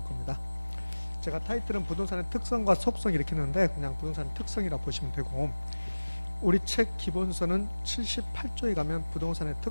겁니다. 제가 타이틀은 부동산의 특성과 속성 이렇게 했는데 그냥 부동산의 특성이라고 보시면 되고, 우리 책 기본서는 78조에 가면 부동산의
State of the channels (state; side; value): inverted; both; correlation -1.00